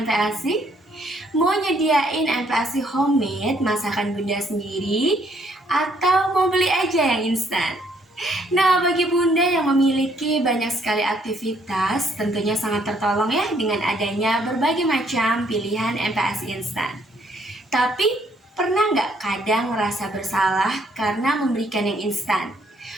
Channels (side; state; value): both; normal; correlation 0.67